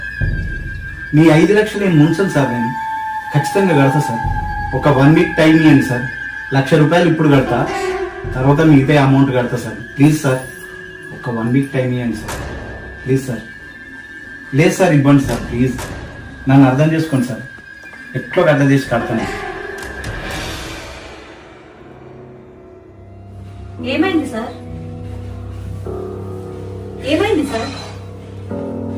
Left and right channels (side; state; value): both; identical; correlation 1.00